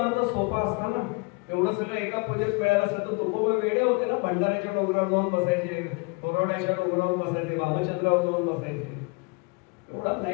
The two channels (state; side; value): quieter; right; 31.4 dB